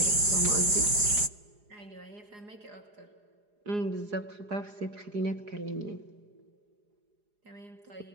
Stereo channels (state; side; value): late; left; 4.8 ms